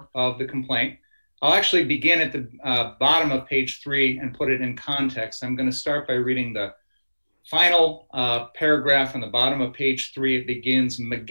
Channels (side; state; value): both; inverted; correlation -1.00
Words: of the complaint. I'll actually begin at the bottom of page 3 and put it in context. I'm going to start by reading the final paragraph on the bottom of page 3. It begins,